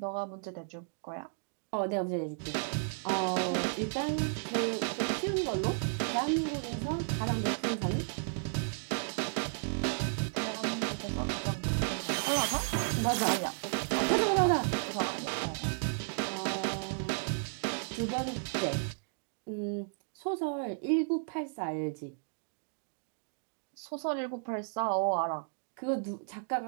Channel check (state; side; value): silent; left; digital silence